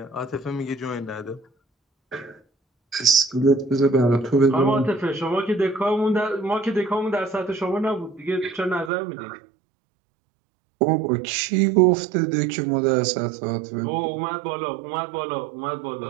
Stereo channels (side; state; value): left; drops out; at 8.9 s